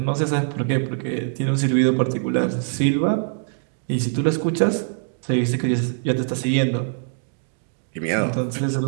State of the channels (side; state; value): left; silent; digital silence